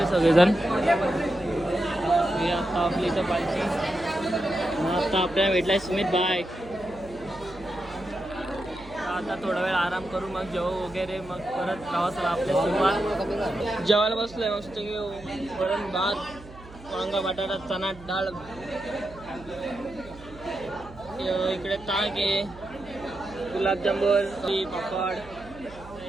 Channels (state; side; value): noise; right; hum, 18 dB below the sound